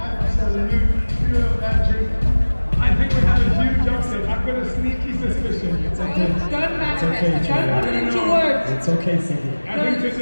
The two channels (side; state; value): both; inverted; correlation -1.00